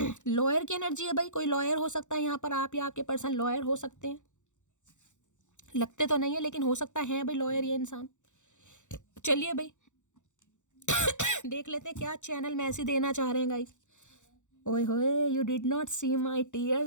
लॉयर की एनर्जी है भाई, कोई लॉयर हो सकता है यहाँ पर, आप या आपके पर्सन लॉयर हो सकते हैं, लगते तो नहीं है लेकिन हो सकता है भाई लॉयर ये इंसान। चलिए भाई देख लेते हैं क्या चैनल मैसेज देना चाह रहे हैं गाइस। ओए होए, you did not see my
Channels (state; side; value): late; right; 0.85 ms